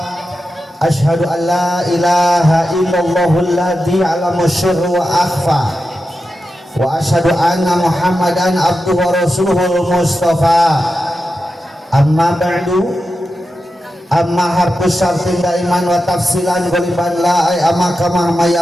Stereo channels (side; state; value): both; normal; correlation 0.90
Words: Ashhadu an la ilaha illallahul ladzi 'allama sirra wa akhfa wa ashhadu anna muhammadan abduhu wa rasuluhul mustafa. Amma ba'du. Amma harfus syartin daiman wa tafsilan goliban la ay amma kama